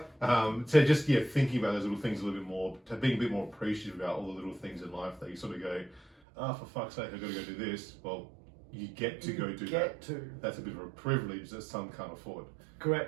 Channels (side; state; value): left; drops out; at 6.1 s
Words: So just thinking about those little things a little bit more, to being a bit more appreciative about all the little things in life that you sort of go, for fuck's sake, I've got to go do this. Well, you get to go do that. That's a bit of a privilege that some can't afford.